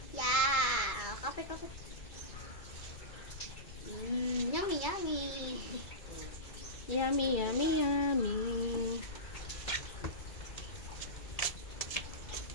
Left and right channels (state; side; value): late; right; 2.3 ms